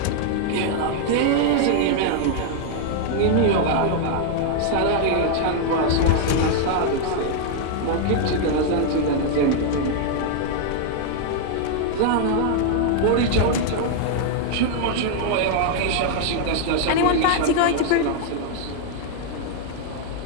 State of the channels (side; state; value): both; different; correlation 0.00